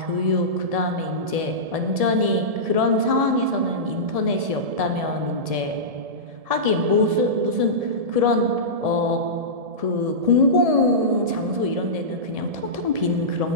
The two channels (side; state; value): left; late; 1.7 ms